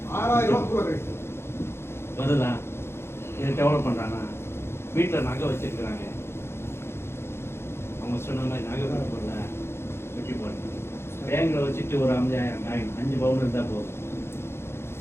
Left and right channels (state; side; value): late; right; 0.12 ms